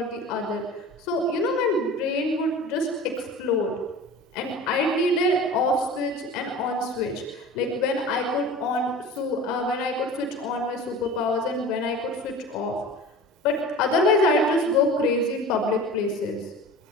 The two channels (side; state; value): both; normal; correlation 0.37